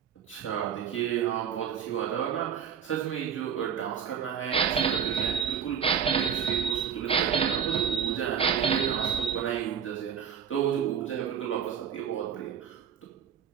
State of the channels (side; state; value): left; quieter; 7.9 dB